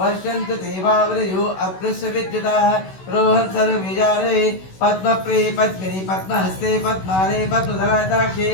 ते भावृयो अप्लुष्य विद्युताः रोहन् सर्वविजारे पद्मप्रिये पद्मिनि पद्महस्ते पद्माने पद्मधराताक्षे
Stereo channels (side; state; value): right; late; 16 ms